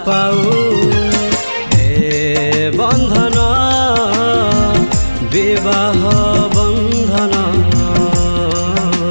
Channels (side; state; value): both; inverted; correlation -1.00